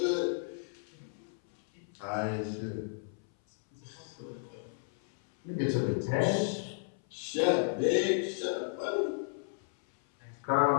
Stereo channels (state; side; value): silent; right; 56 dB below the other